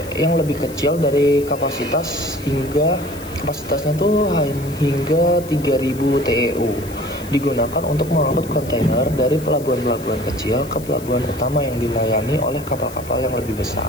yang lebih kecil dari kapasitasnya tuh hingga 3000 TEU, digunakan untuk mengangkut kontainer dari pelabuhan-pelabuhan kecil ke pelabuhan utama yang dilayani oleh kapal-kapal yang lebih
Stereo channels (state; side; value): noise; left; hiss, 17 dB below the sound